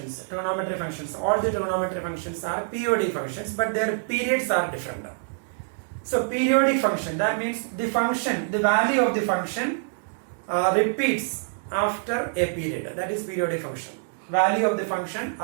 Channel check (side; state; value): left; silent; digital silence